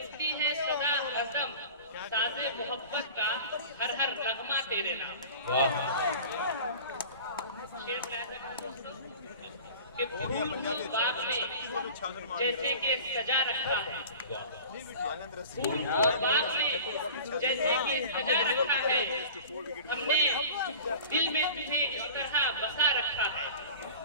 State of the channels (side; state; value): both; inverted; correlation -0.38